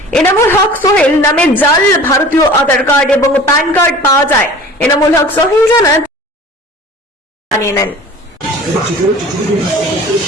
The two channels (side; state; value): both; normal; correlation 0.43